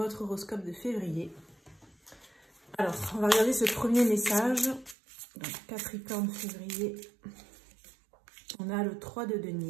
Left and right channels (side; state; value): left; drops out; at 5.0 s